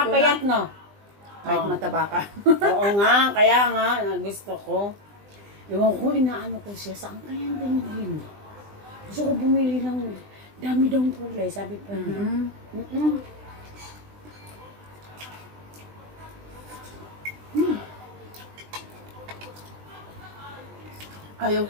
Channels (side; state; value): left; late; 20 ms